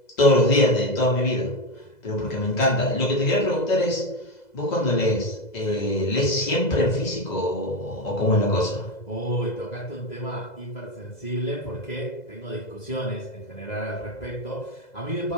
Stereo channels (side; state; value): right; late; 2.0 ms